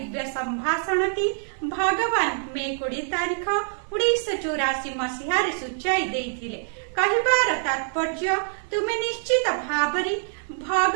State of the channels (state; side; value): silent; left; 62 dB below the other